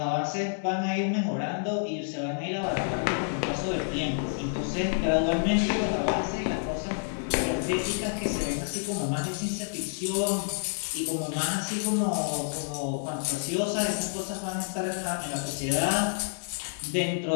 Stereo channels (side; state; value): right; silent; digital silence